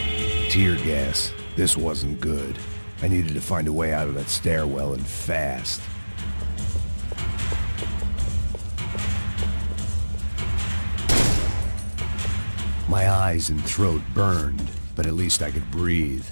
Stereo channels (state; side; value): inverted; both; correlation -1.00